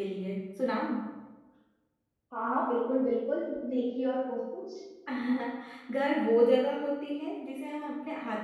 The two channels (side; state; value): both; identical; correlation 1.00